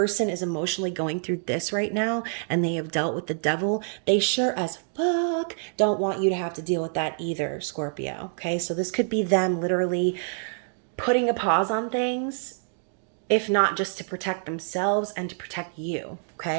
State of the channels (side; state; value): left; silent; 61 dB below the other